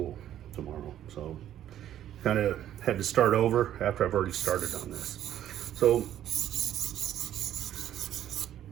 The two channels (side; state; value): left; quieter; 11.4 dB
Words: tomorrow. So kind of had to start over after I've already started on this. So